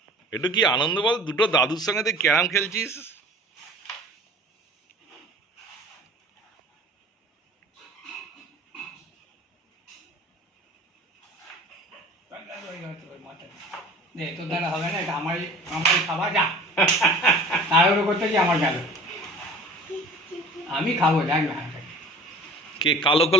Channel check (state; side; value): normal; both; correlation 0.44